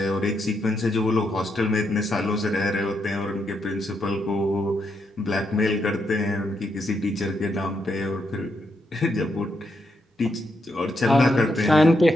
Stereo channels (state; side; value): normal; both; correlation 0.80